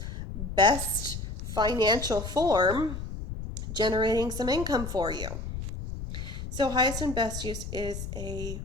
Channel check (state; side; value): noise; left; rumble, 7 dB below the sound